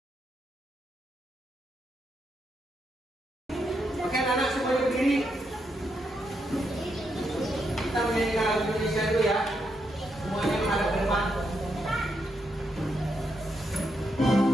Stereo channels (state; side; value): normal; both; correlation 0.81